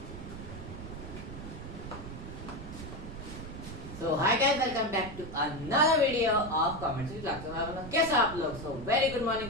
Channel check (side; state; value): right; noise; rumble, 10 dB below the sound